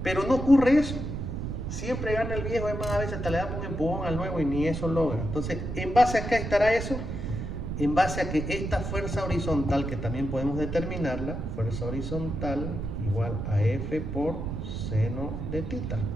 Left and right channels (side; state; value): right; noise; rumble, 4 dB below the sound